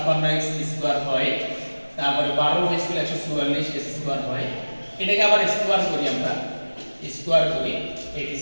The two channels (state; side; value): inverted; both; correlation -1.00